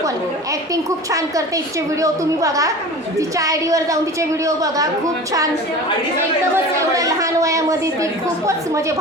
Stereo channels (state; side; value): normal; both; correlation 0.36